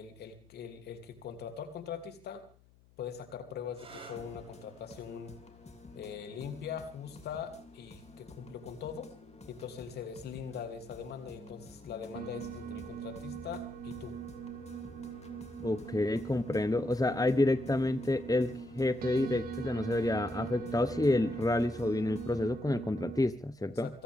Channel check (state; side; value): noise; left; hum, 28 dB below the sound